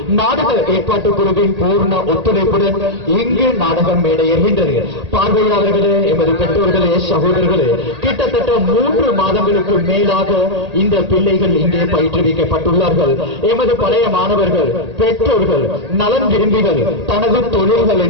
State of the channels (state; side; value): late; left; 1.8 ms